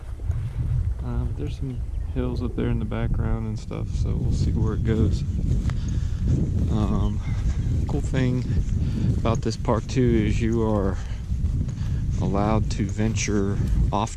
There's some hills up there in the background and stuff, so we'll see where it goes. Cool thing about this park too is you are allowed to venture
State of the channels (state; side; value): identical; both; correlation 1.00